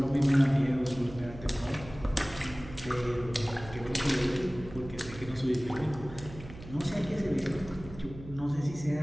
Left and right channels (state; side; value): noise; right; hum, 15 dB below the sound